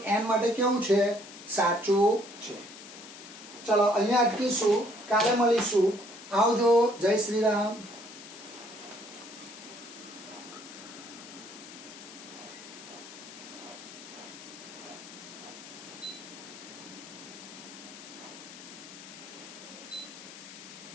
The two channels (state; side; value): noise; left; hiss, 15 dB below the sound